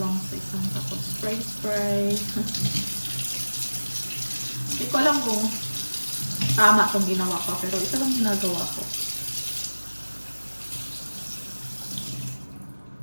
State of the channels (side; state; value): both; inverted; correlation -1.00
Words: lang sa isang tapos spray. Hindi ko alam kung tama itong ginawa ko, pero ito lang ginagawa ko.